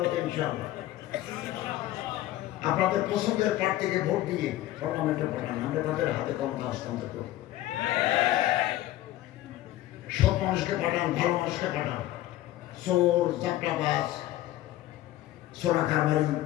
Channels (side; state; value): right; quieter; 14.9 dB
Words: ইনশাআল্লাহ আপনাদের পছন্দের প্রার্থীকে ভোট দিয়ে পার্লামেন্টে পাঠান, আমরা তাদের হাতে ক্ষমতা হস্তান্তর করব। সব মানুষকে পাঠান, ভালো মানুষকে পাঠান, চোর চাপটাবাজ সোনা কারবারি